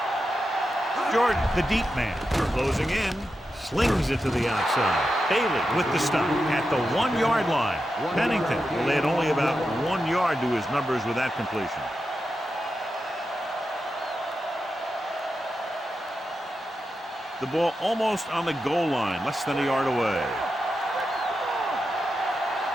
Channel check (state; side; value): normal; both; correlation 0.89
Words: Jordan, the deep man, closing in. Slings it to the outside. Bailey with the stop at the 1-yard line. Pennington will add only about 1 yard to his numbers with that completion. The ball almost on the goal line, less than a yard away.